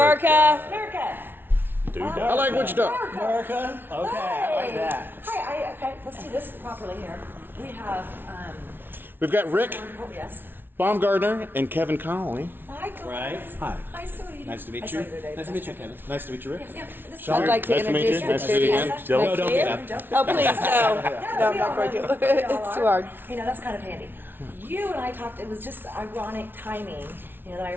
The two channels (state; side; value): late; left; 0.10 ms